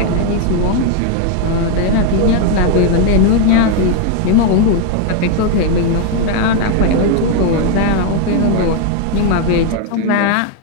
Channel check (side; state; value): both; different; correlation 0.00